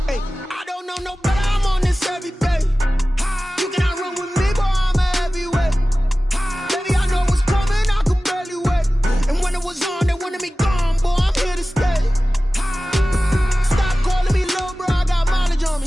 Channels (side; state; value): both; normal; correlation 0.96